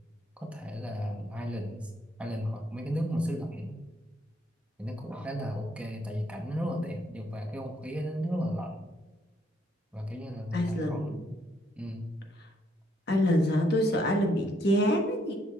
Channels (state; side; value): normal; both; correlation 0.71